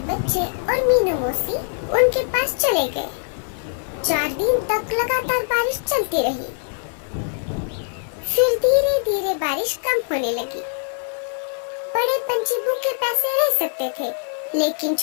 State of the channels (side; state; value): right; silent; 61 dB below the other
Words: बच्चे और मीनू मौसी उनके पास चले गए। 4 दिन तक लगातार बारिश चलती रही। फिर धीरे धीरे बारिश कम होने लगी। बड़े पंछी भूखे प्यासे रह सकते थे, लेकिन